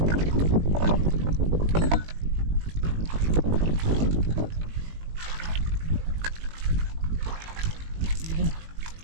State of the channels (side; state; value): left; late; 19 ms